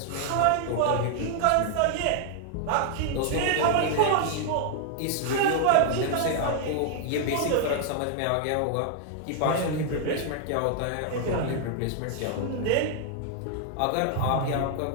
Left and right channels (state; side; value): different; both; correlation 0.00